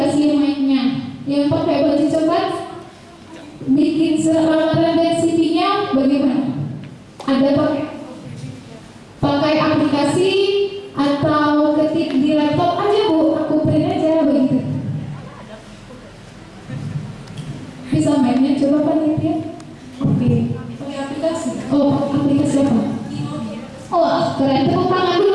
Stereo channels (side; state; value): both; identical; correlation 1.00